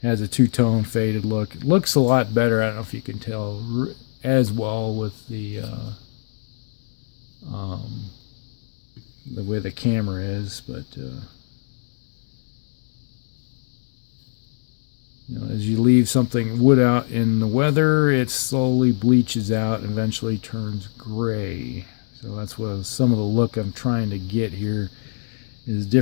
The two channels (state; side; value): silent; right; digital silence